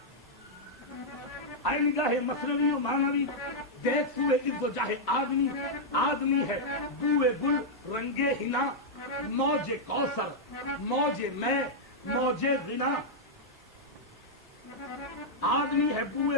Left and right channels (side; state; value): both; normal; correlation -0.06